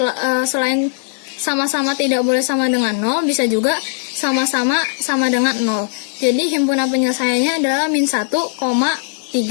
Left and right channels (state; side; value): silent; right; 64 dB below the other